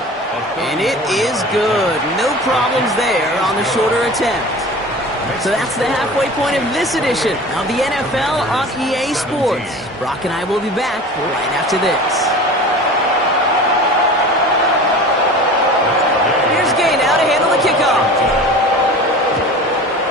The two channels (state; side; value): normal; both; correlation 0.37